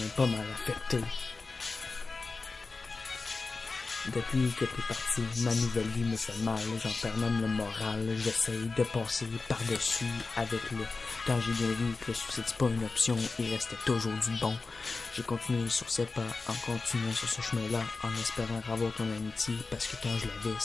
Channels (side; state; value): right; quieter; 3.9 dB